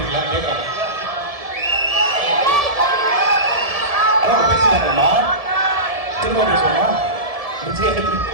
கேட்கலாம். அதான் பேசினாங்கம்மா, திரும்ப பேசுவோமா?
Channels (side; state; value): left; late; 1.7 ms